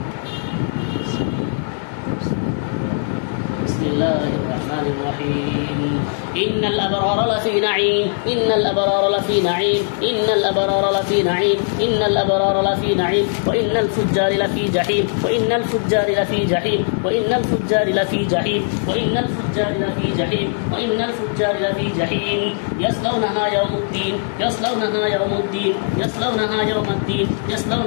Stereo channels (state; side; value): silent; right; digital silence